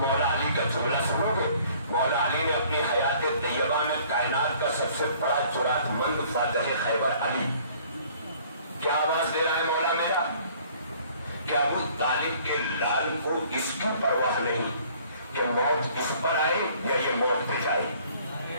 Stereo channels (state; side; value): inverted; both; correlation -0.56